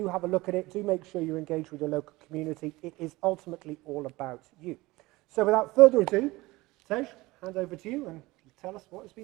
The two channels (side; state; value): left; quieter; 20.6 dB